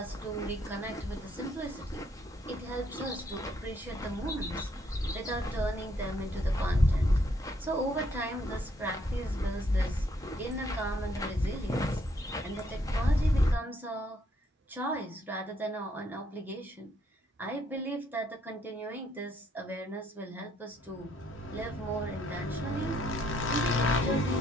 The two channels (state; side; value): normal; both; correlation 0.70